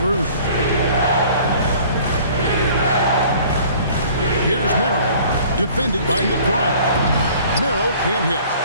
Here's Merrill, defended by McBride. Merrill can't hit.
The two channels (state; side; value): inverted; both; correlation -0.51